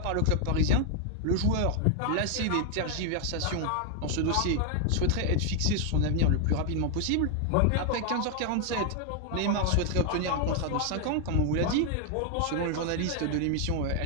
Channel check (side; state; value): both; different; correlation 0.00